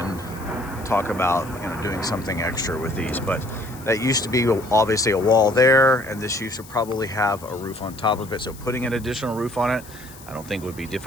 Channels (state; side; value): noise; left; hiss, 20 dB below the sound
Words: talk about doing something extra with these. But that used to be obviously a wall there, and this used to probably have a roof on top of it. So putting an additional roof on it, I don't think would be